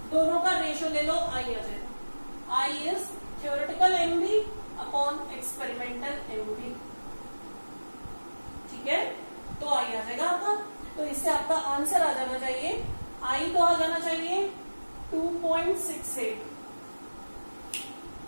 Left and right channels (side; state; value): both; inverted; correlation -1.00